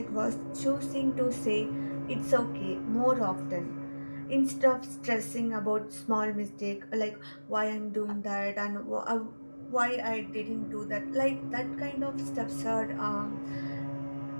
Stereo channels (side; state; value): both; inverted; correlation -1.00